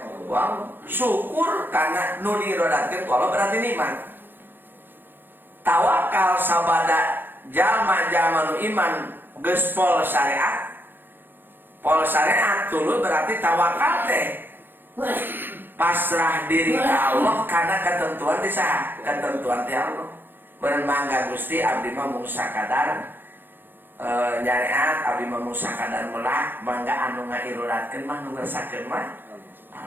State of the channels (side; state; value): left; late; 0.097 ms